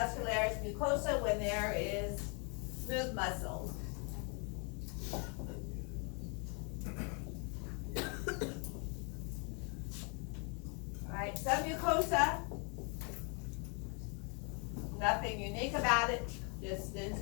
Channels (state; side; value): quieter; right; 36.2 dB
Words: mucosa when there is smooth muscle. Alright, submucosa, nothing unique about it, just